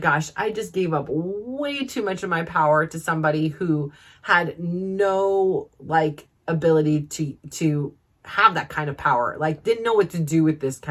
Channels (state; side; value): identical; both; correlation 1.00